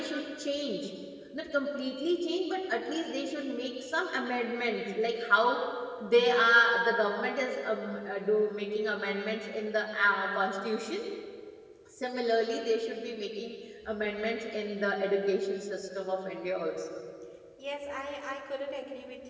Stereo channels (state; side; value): identical; both; correlation 1.00